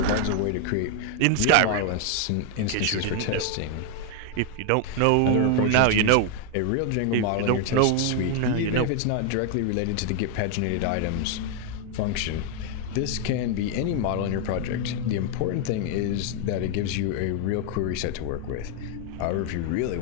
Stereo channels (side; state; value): both; different; correlation 0.01